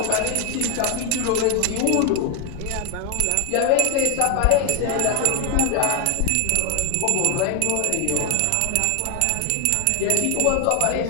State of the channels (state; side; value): different; both; correlation 0.00